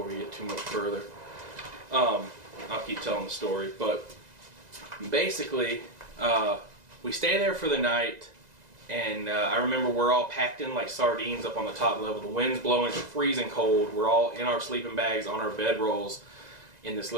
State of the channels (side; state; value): left; late; 2.0 ms